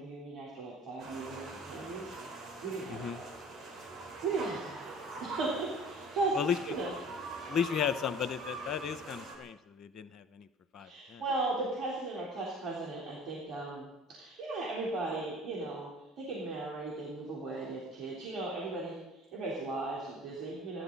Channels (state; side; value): normal; both; correlation 0.45